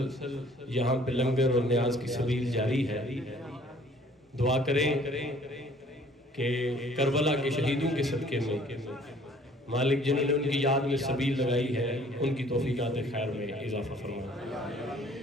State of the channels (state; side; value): normal; both; correlation 0.56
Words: یہاں پہ لنگر اور نیاز کی سبیل جاری ہے. دعا کریں کہ کربلا کے شہیدوں کے صدقے میں مالک جنہوں نے ان کی یاد میں سبیل لگائی ہے ان کی توفیقات خیر میں اضافہ فرمائے.